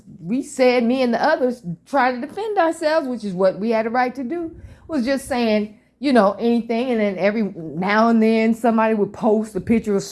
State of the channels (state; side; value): identical; both; correlation 1.00